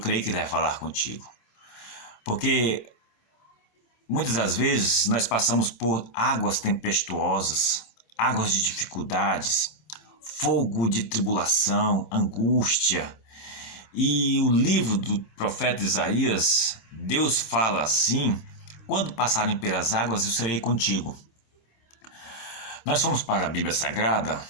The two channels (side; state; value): right; late; 26 ms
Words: que ele vai falar contigo. Porque muitas das vezes nós passamos por águas tempestuosas, águas de dificuldades, fogo de tribulação, angústia. E o livro do profeta Isaías, Deus fala assim: quando passarem pelas águas, eu serei contigo. Nós fomos para a Bíblia Sagrada,